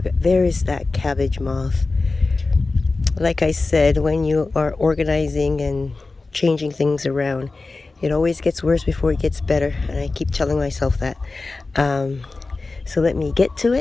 there is that cabbage moth. Like I said, when you are organizing and changing things around, it always gets worse before it gets better, and I keep telling myself that. So let me get to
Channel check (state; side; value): quieter; right; 3.6 dB